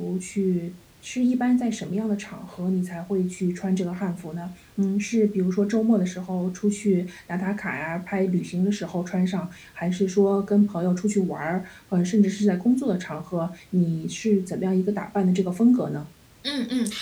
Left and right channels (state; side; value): identical; both; correlation 1.00